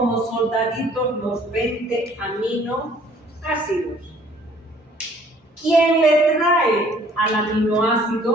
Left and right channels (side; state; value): both; normal; correlation 0.57